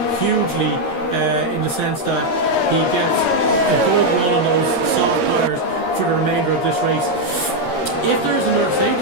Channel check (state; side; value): late; right; 13 ms